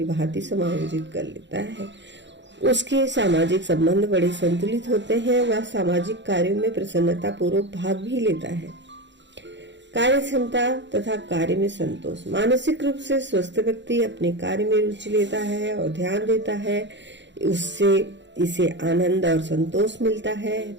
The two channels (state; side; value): late; left; 0.52 ms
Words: भांति समायोजित कर लेता है। उसके सामाजिक संबंध बड़े संतुलित होते हैं। वह सामाजिक कार्यों में प्रसन्नता पूर्वक भाग भी लेता है। कार्य क्षमता तथा कार्य में संतोष। मानसिक रूप से स्वस्थ व्यक्ति अपने कार्य में रुचि लेता है और ध्यान देता है। उससे इसे आनंद और संतोष मिलता है